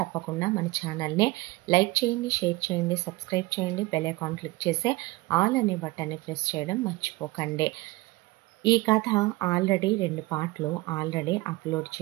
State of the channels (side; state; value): left; quieter; 20.8 dB